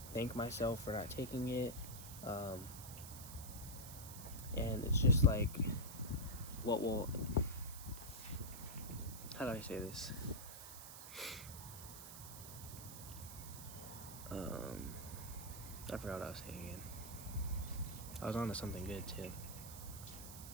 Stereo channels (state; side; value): noise; right; hiss, 11 dB below the sound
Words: thank myself for not taking it? And it's just like, how do I say this? I forgot what I was saying again. I was on to something good too.